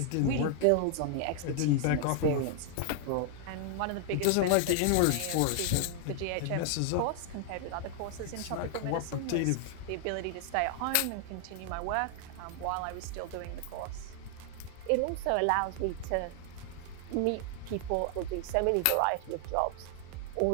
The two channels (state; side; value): different; both; correlation 0.00